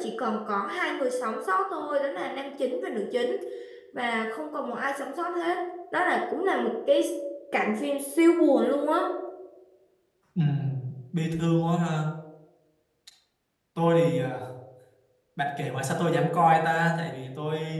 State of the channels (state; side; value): identical; both; correlation 1.00